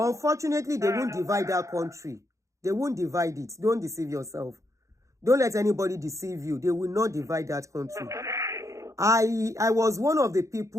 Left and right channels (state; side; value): late; left; 0.15 ms